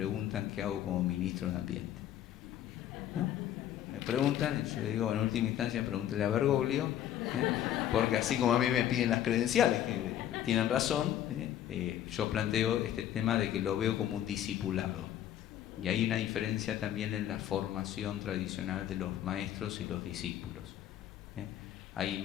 qué hago como ministro de Ambiente, ¿no? Me preguntan, y yo le digo, en última instancia, pregúntele a Bergoglio, porque así como a mí me piden las credenciales, que tienen razón, yo planteo este tema de que lo veo como un discipulado. Y hay una diferencia también en la formación tradicional de los maestros y los discípulos. Hay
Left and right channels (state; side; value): quieter; right; 11.3 dB